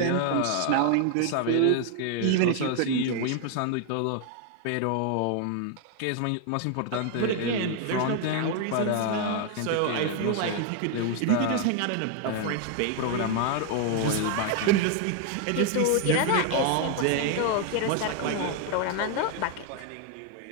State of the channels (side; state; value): both; different; correlation 0.01